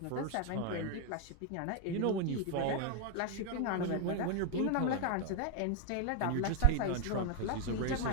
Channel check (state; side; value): different; both; correlation 0.01